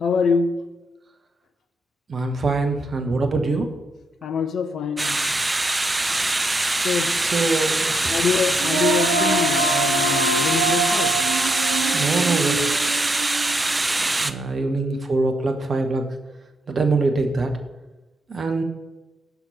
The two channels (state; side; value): normal; both; correlation 0.78